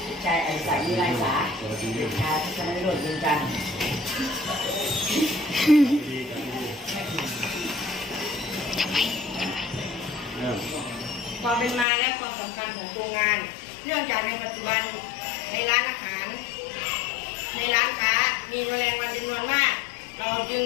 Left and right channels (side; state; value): right; drops out; at 11.9 s